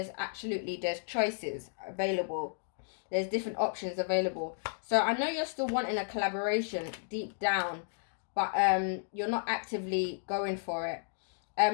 choices available. There's different options available. So I know you're still wanting a collaboration deep down, but you're not actively going for it.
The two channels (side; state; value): right; silent; digital silence